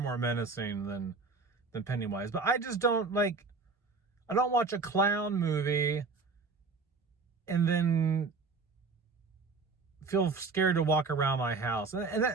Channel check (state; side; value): quieter; left; 4.2 dB